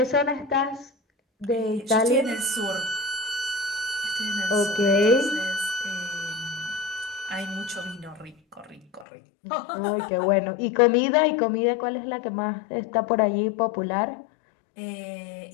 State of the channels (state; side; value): drops out; right; at 9.1 s